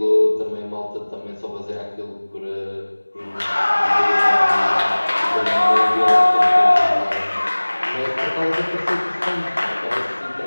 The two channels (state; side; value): inverted; both; correlation -1.00